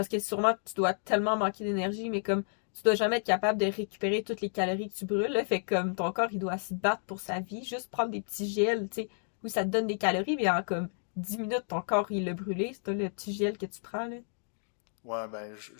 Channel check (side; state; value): right; silent; digital silence